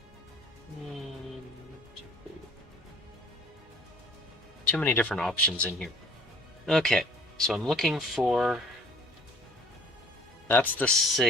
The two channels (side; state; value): both; normal; correlation 0.52